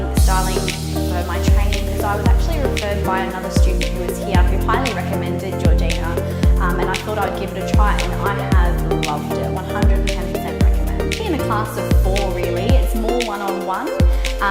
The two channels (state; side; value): identical; both; correlation 1.00